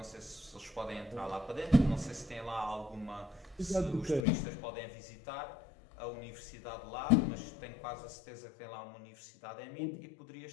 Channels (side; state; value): right; drops out; at 4.2 s